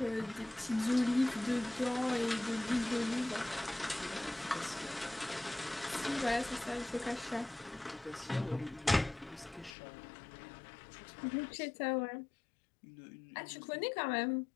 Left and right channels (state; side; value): drops out; right; at 9.7 s